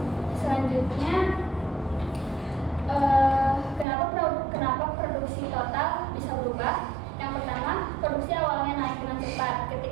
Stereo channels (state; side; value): drops out; left; at 3.9 s